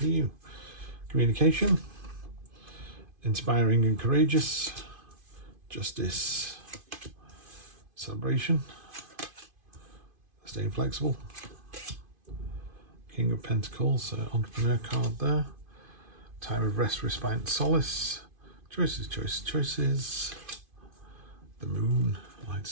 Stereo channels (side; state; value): left; late; 2.5 ms